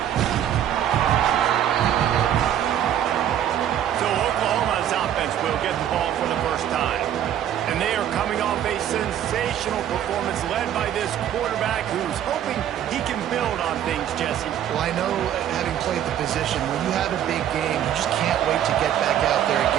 So Oklahoma's offense will get the ball for the first time. And they are coming off a sensational performance led by this quarterback who's hoping he can build on things, Jesse. Well, I know, having played the position, when you have a big game, you just can't wait to get back out there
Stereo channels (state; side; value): quieter; left; 10.5 dB